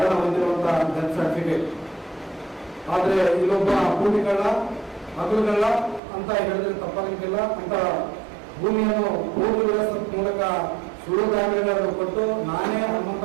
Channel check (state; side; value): drops out; left; at 6.0 s